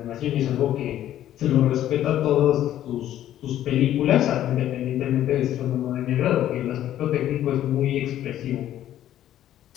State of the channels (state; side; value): quieter; right; 12.1 dB